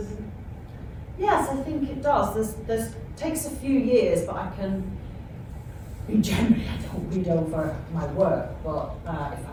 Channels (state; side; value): identical; both; correlation 1.00